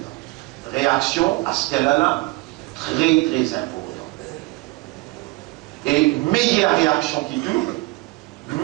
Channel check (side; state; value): left; quieter; 23.3 dB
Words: Réaction à ce qu'elle a là, très très important. Et meilleure réaction qui